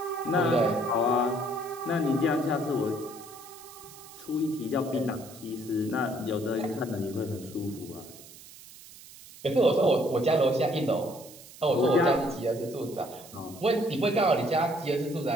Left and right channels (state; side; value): noise; right; hiss, 19 dB below the sound